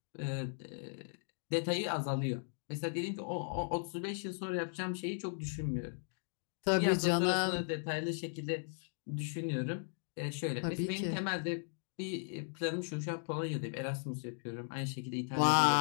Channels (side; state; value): right; silent; digital silence